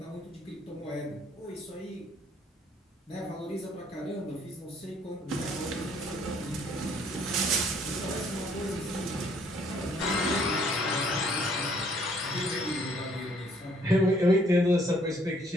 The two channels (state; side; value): normal; both; correlation 0.63